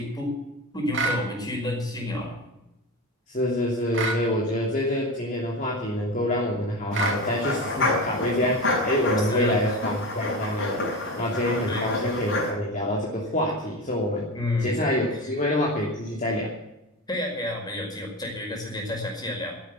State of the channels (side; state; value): both; normal; correlation 0.24